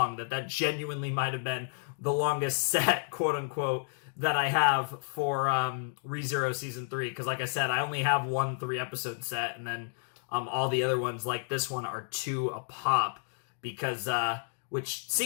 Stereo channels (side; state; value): right; silent; digital silence